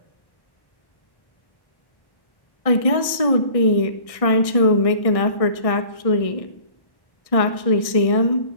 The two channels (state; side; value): late; right; 1.6 ms